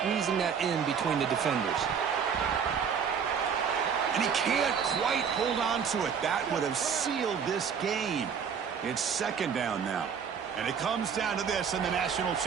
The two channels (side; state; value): left; quieter; 6.9 dB